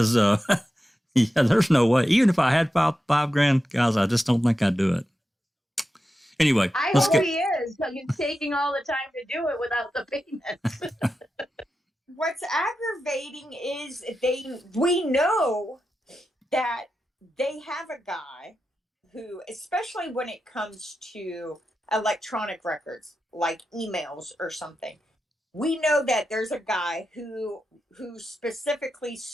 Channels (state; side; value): normal; both; correlation 0.90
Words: there's no way. Even if I had $5,000, guys, I just don't think I'd do it. Anyway, I hope he is, because he's taking all the time to do it without the payment. What's aggravating is we know that they have a guy who, especially when it comes to electronic records, like emails or something, we know that there's a guy who specifically